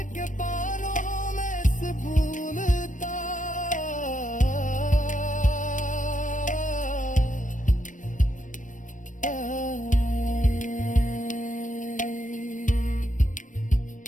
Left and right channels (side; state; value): right; late; 0.37 ms